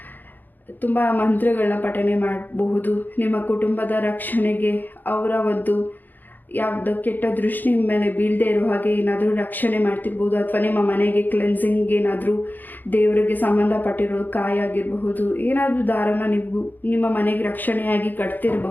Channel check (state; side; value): late; right; 0.087 ms